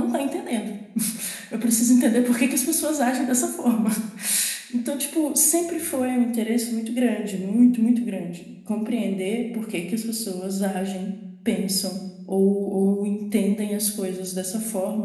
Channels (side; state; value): both; identical; correlation 1.00